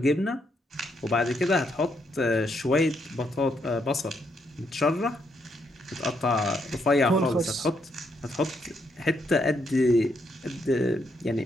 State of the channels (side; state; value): both; normal; correlation 0.76